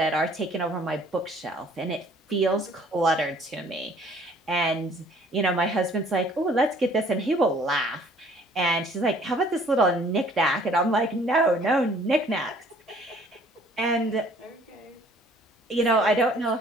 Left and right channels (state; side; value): normal; both; correlation 0.57